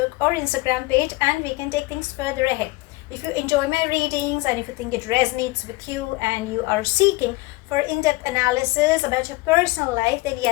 or Instagram page, and we can take things further ahead. If you enjoy my readings and if you think it resonates with you and you are seeking for in-depth analysis about your personal life, then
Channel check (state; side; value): quieter; right; 22.2 dB